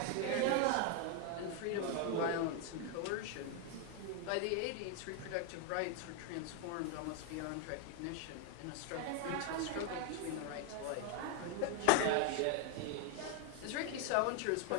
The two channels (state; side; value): different; both; correlation 0.01